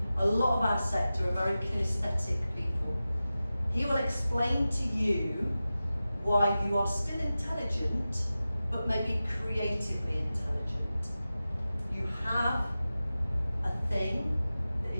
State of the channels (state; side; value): inverted; both; correlation -0.94